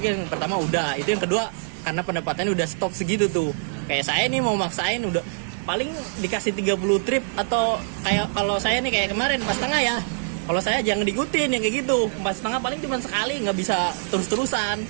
yang pertama udah, itu yang kedua karena pendapatannya udah stop segitu tuh. Kayak saya nih mau maksain udah paling dikasih 30 trip, atau kayak kalau saya nih kayak kemarin pas tengah ya. Kalau saya jangan diikutin yang kayak gitu. Pas tengah paling cuma sekali, nggak bisa terus-terusan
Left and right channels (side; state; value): left; silent; digital silence